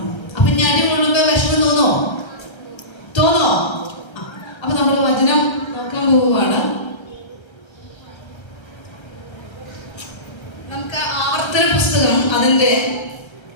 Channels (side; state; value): right; late; 1.3 ms